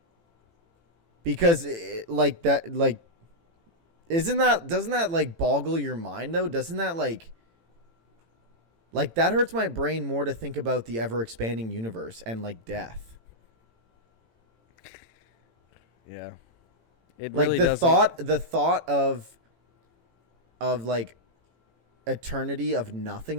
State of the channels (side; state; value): left; late; 18 ms